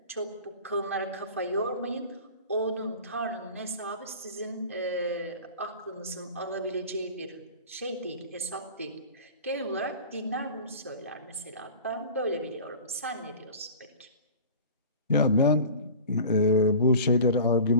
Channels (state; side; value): inverted; both; correlation -0.40